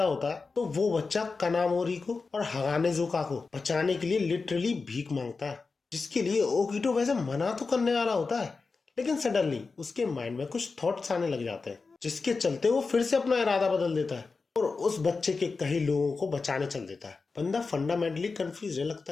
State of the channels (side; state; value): right; quieter; 4.3 dB